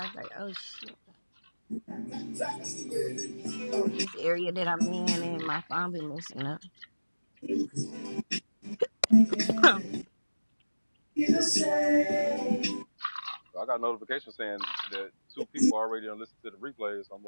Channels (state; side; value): inverted; both; correlation -1.00